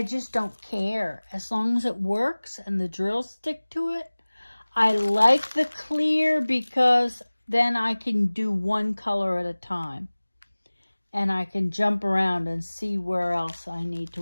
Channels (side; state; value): both; inverted; correlation -1.00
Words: just don't care. As long as it works and the drills stick to it. I like the clear because then I can do one color at a time. And I can jump around and see where else I need to